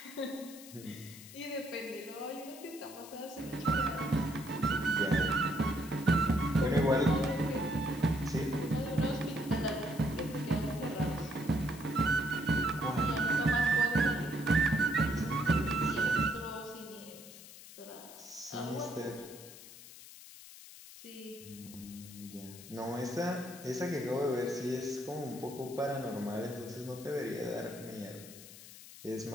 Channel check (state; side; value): noise; left; hiss, 16 dB below the sound